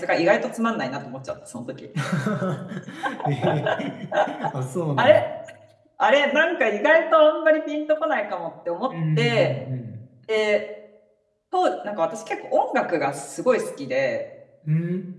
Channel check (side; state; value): both; identical; correlation 1.00